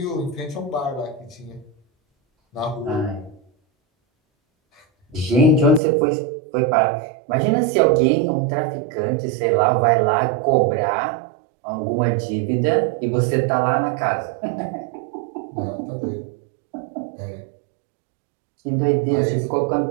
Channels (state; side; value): drops out; left; at 5.8 s